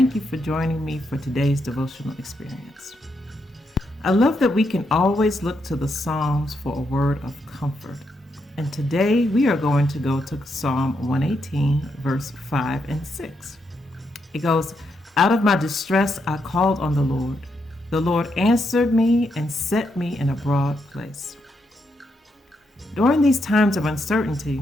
you for joining me for today's devotional experience. I love that we can always look to the Psalms for a word of comfort. And today we are going to go to Psalm 118, verse 5 and 6. It goes, "Out of my distress I called on the Lord. The Lord answered me and set me in a broad place." During these times of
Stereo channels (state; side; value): normal; both; correlation 0.80